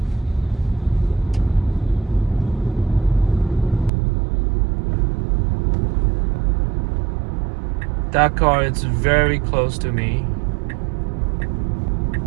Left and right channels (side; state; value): left; drops out; at 3.9 s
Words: That car is very close to me